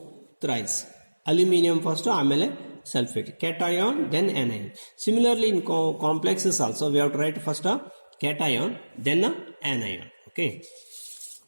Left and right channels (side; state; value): both; inverted; correlation -1.00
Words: thrice, aluminium first ಆಮೇಲೆ sulfate, cation then anion. Similarly in complexes also we have to write first a cation then a anion. Okay,